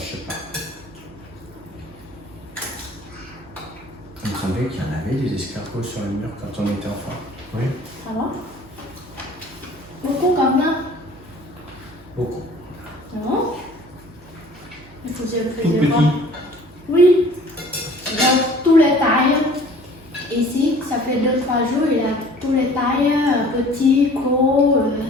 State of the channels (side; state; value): right; noise; hum, 24 dB below the sound